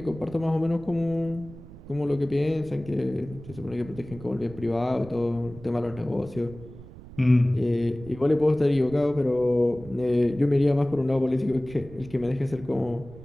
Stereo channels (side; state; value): right; noise; rumble, 17 dB below the sound